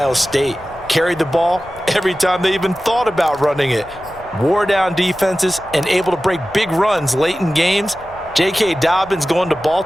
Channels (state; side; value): noise; left; rumble, 22 dB below the sound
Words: State. Carried the ball every time they even thought about running it. Wore down defenses and able to break big runs late in games. J.K. Dobbins going to